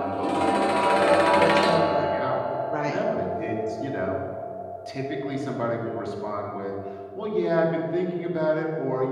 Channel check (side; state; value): both; identical; correlation 1.00